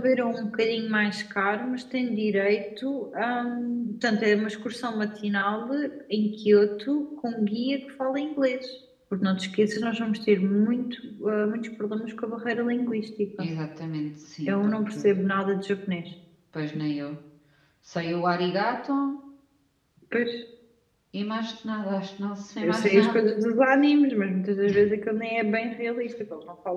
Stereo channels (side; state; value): both; identical; correlation 1.00